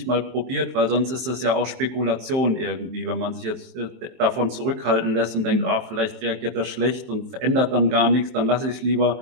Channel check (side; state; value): left; late; 23 ms